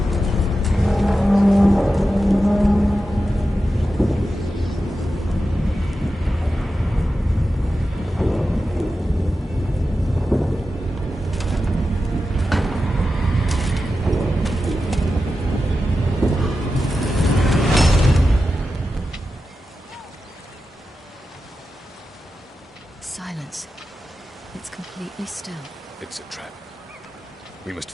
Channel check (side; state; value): both; normal; correlation 0.91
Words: Silence. It's completely still. It's a trap. We must